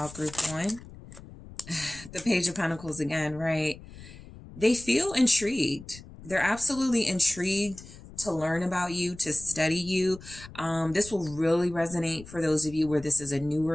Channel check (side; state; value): left; noise; rumble, 17 dB below the sound